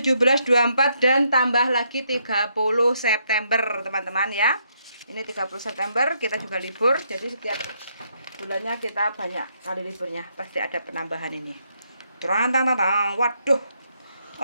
24 dan tambah lagi 30 September teman-teman ya. Ini 30 September kita juga libur, jadi setiap bulannya kita banyak kali liburnya, pasti ada penambahan ini. Waduh.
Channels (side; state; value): both; inverted; correlation -0.75